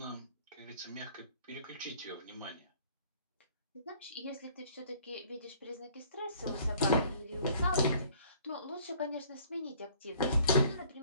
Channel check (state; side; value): inverted; both; correlation -0.55